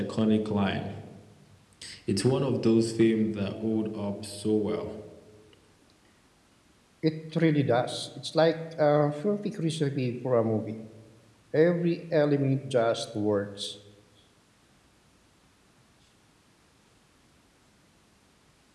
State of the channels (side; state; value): both; identical; correlation 1.00